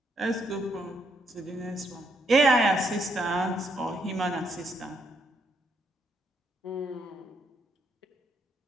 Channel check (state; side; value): normal; both; correlation 0.75